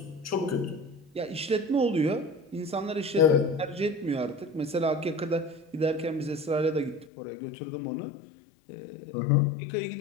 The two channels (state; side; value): drops out; right; at 7.1 s